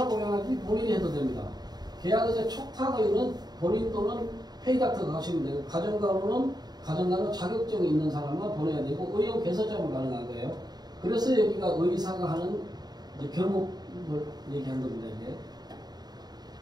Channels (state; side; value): late; left; 0.20 ms